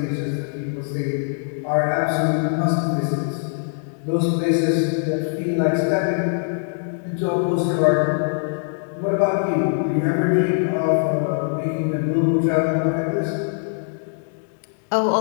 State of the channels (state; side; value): silent; right; digital silence